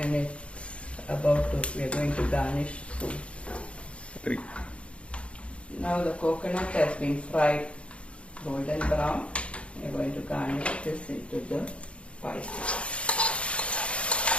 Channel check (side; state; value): right; late; 0.060 ms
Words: and it's we are going to garnish soon. 3. Now the coconut has been fried golden brown. We are going to garnish this into the payasam.